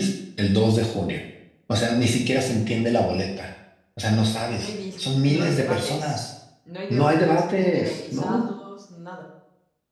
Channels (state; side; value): identical; both; correlation 1.00